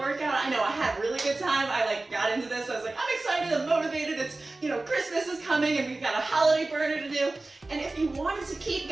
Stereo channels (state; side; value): quieter; left; 3.1 dB